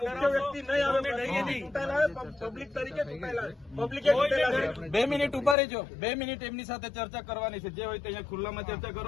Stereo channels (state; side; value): drops out; right; at 5.6 s